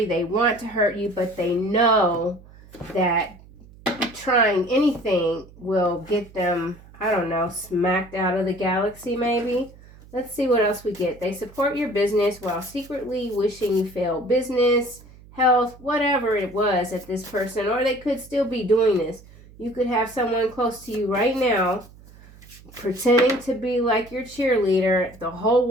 they want to hurt you, but they know that trying anything will get them, I don't know, smacked out of the galaxy maybe. Let's see what else we get. They support your business while secretly wishing you fail. Business, health, whatever it was at this person, or they could still be doing this. You could have someone close to you right now pretending to be like your cheerleader the whole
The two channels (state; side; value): noise; right; hum, 22 dB below the sound